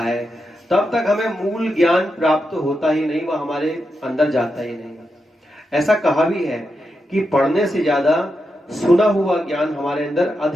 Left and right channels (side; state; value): both; normal; correlation 0.86